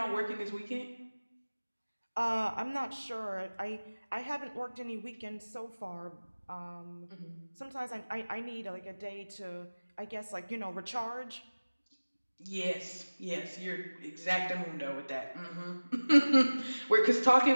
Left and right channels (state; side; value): inverted; both; correlation -1.00